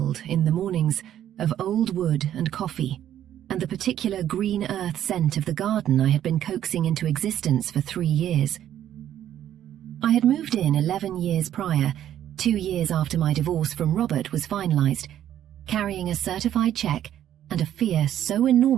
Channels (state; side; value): quieter; left; 11.2 dB